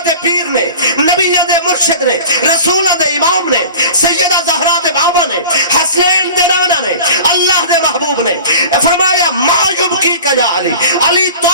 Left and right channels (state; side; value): inverted; both; correlation -0.39